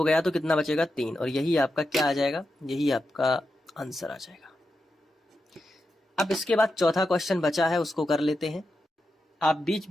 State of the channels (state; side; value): normal; both; correlation 0.88